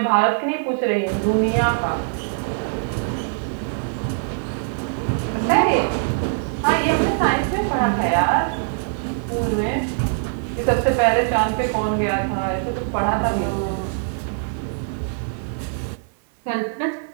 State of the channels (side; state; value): left; silent; 57 dB below the other